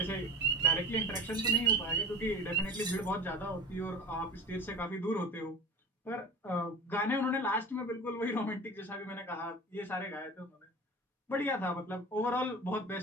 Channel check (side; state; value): both; normal; correlation 0.34